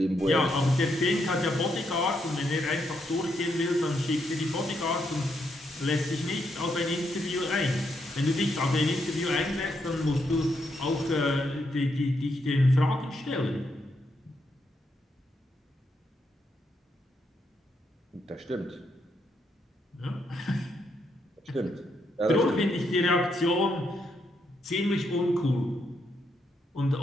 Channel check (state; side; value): normal; both; correlation 0.78